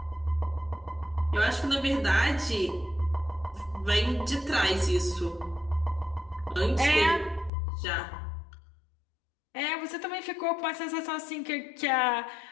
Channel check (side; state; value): right; drops out; at 7.5 s